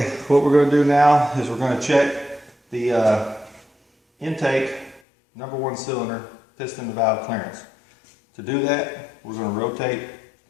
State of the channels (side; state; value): right; drops out; at 5.0 s